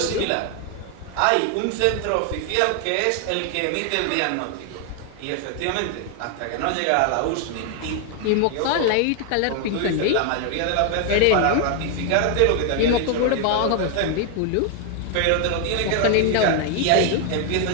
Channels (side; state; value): both; different; correlation 0.00